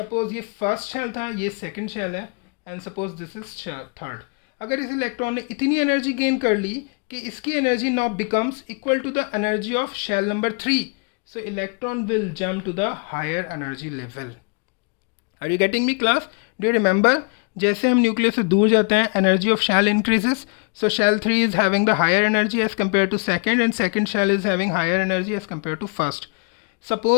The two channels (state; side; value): quieter; right; 35.8 dB